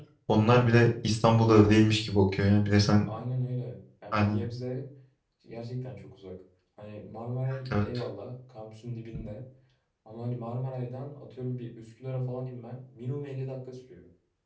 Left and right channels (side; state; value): both; identical; correlation 1.00